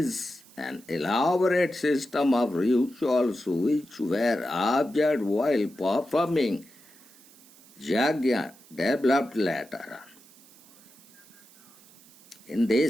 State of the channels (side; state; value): right; noise; hiss, 25 dB below the sound